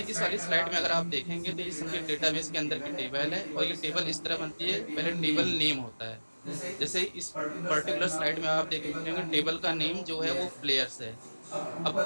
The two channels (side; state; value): both; inverted; correlation -1.00